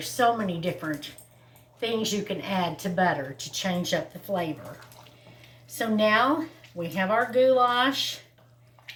so many different things you can add to butter to change up the flavor. So now we have our goulash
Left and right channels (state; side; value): identical; both; correlation 1.00